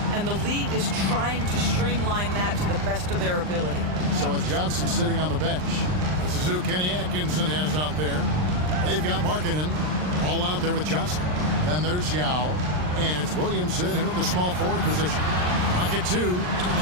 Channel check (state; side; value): late; left; 39 ms